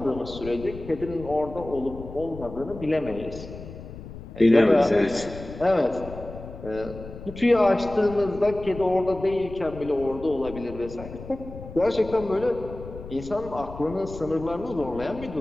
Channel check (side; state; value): left; noise; rumble, 13 dB below the sound